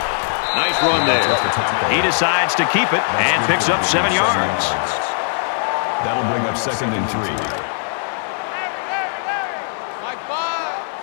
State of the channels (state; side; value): silent; right; digital silence